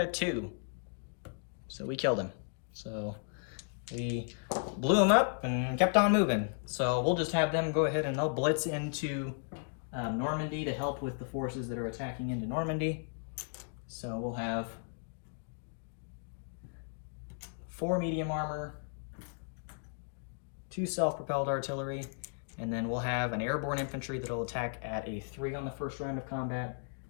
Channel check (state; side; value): silent; right; digital silence